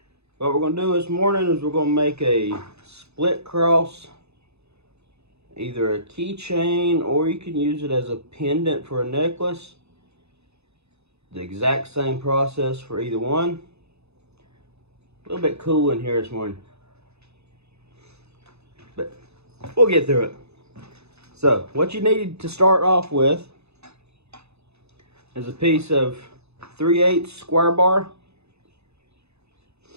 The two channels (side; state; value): left; late; 0.80 ms